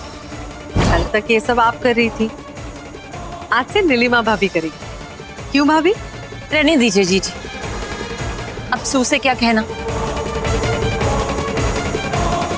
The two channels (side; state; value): both; identical; correlation 1.00